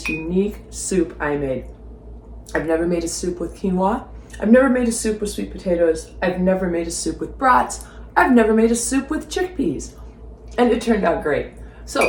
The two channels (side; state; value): both; identical; correlation 1.00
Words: unique soup I made. I've never made a soup with quinoa. I've never made a soup with sweet potatoes. I've never made a soup with brats. I've never made a soup with chickpeas. And it turned out great.